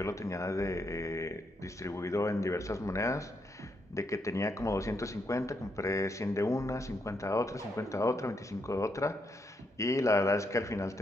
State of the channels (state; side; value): normal; both; correlation 0.78